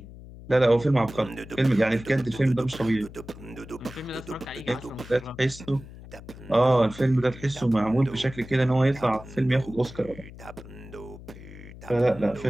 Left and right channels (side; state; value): left; noise; hum, 16 dB below the sound